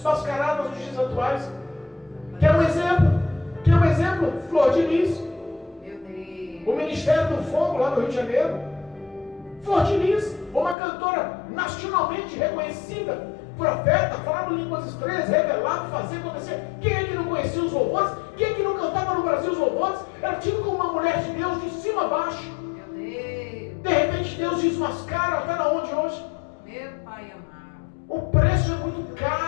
nos dias atuais? Quer um exemplo? Flor de Lis. Meu Deus. O Ministério do Fogo lá no Rio de Janeiro. Flor de Lis, uma cantora nacionalmente reconhecida, profeta, falava línguas estranhas, revelado, fazia acontecer. Quem é que não conhecia os louvores? Quem é que não cantava no Brasil os louvores? Era tido como uma mulher de Deus de cima a baixo. Meu Deus. De repente Deus desmascara, está na onde hoje? Meu Pai amado. O preço é muito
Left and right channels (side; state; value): right; drops out; at 10.8 s